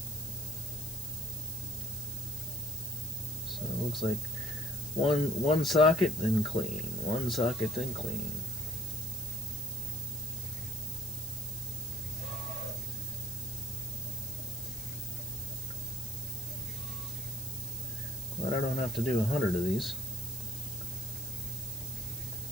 So it looks like one socket, then clean. One socket, then clean. Glad I don't have to do 100 of these.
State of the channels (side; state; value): left; noise; hiss, 10 dB below the sound